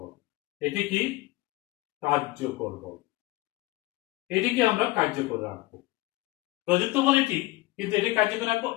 এটি কি? কার্যকর বল। এটিকে আমরা কার্যকর রাখবো। প্রযুক্ত বল এটি, কিন্তু এটি কার্যকর রাখবো,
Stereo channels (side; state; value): right; quieter; 19.7 dB